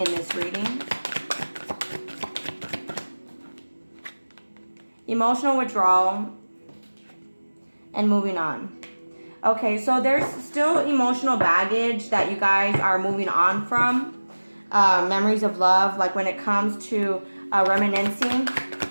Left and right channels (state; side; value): inverted; both; correlation -1.00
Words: this reading? Emotional withdrawal and moving on. Okay, so there's still emotional baggage that you guys are moving on from. Memories of love, like when it comes to reminiscing.